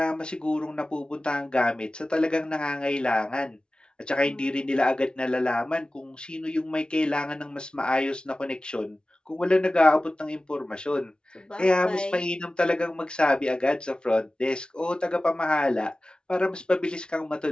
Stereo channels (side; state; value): right; late; 0.054 ms